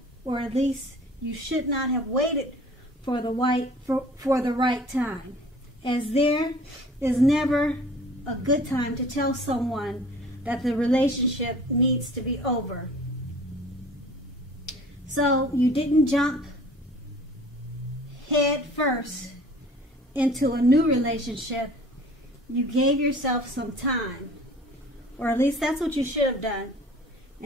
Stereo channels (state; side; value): normal; both; correlation 0.48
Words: or at least you should not have waited for the right time, as there is never a good time to tell someone that the relationship needs to be over. So you didn't jump head first into a new relationship. You gave yourself some time, or at least that's what you should have done.